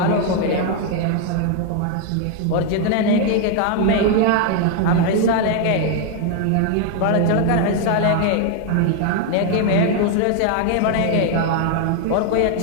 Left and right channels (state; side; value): different; both; correlation 0.00